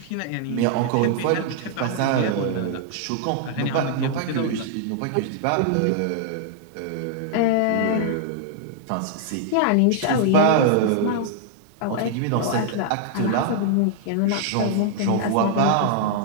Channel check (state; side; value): different; both; correlation 0.00